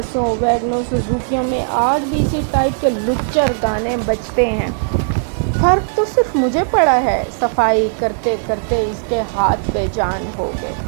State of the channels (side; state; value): left; silent; digital silence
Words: ویگنوں، سزوکیوں میں آج بھی اسی ٹائپ کے لچر گانے بجتے ہیں۔ فرق تو صرف مجھے پڑا ہے۔ صفائی کرتے کرتے اس کے ہاتھ بے جان ہو گئے۔